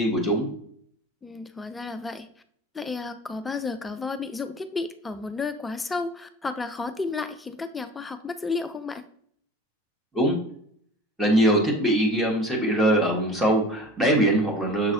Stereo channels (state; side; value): normal; both; correlation 0.41